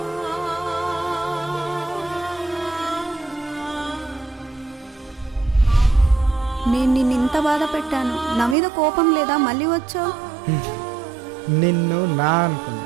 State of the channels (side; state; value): left; drops out; at 8.6 s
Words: నేను నిన్నింత బాధ పెట్టాను, నా మీద కోపం లేదా? మళ్ళీ వచ్చావు. నిన్ను నా